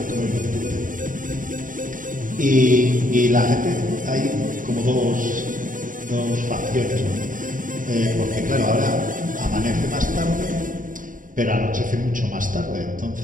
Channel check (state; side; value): late; left; 0.39 ms